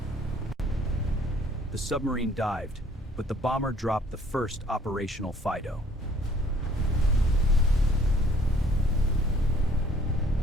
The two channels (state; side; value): normal; both; correlation 0.58